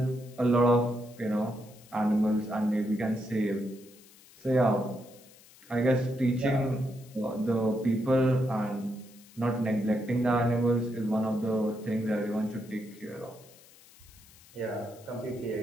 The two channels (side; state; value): left; noise; hiss, 24 dB below the sound